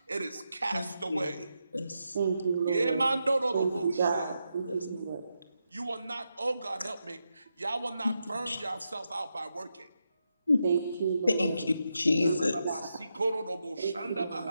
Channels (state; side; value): inverted; both; correlation -0.85